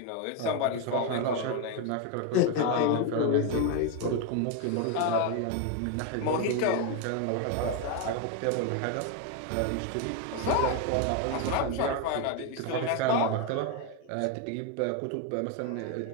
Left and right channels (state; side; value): different; both; correlation 0.02